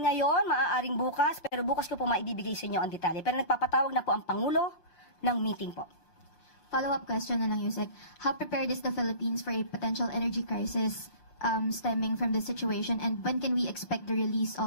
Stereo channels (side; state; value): right; late; 6.8 ms